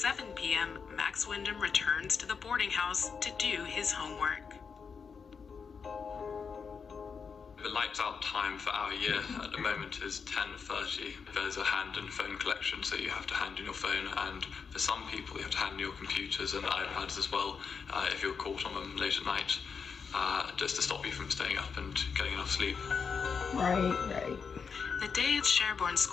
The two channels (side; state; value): right; quieter; 5.8 dB